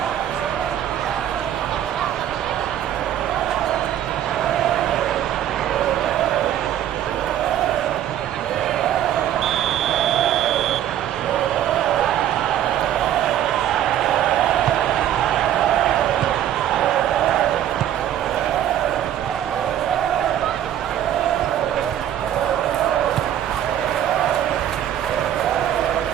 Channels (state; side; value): quieter; left; 11.1 dB